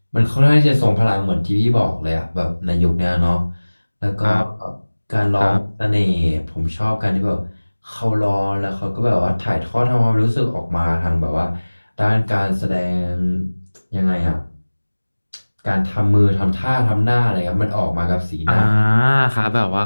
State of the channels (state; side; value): inverted; both; correlation -1.00